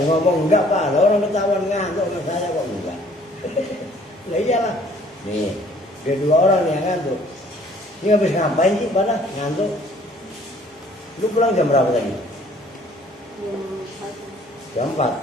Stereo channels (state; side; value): normal; both; correlation 0.57